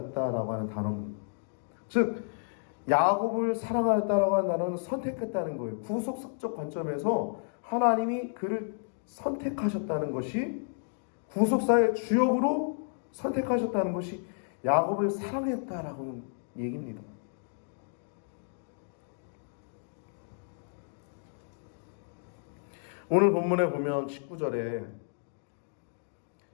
하는 단어입니다. 즉 야곱을 사랑하였다라고 하는 단어는 선택했다는 거예요. 구속적 관점에서 하나님이 그를 선택하셨다는 것이, 구속사의 주역으로 선택하셨다는 것이 야곱을 사랑했다라고 얘기입니다. 오늘 본문에 보면 19절에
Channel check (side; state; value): right; silent; digital silence